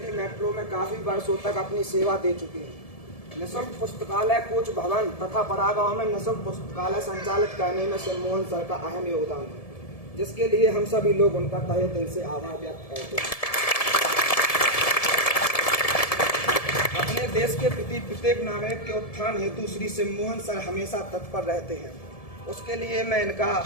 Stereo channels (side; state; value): right; late; 1.7 ms